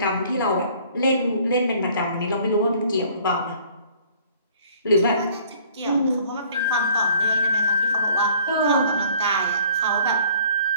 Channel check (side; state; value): both; inverted; correlation -0.56